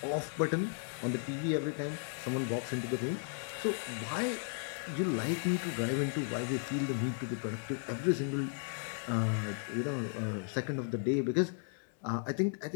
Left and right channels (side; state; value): right; silent; 54 dB below the other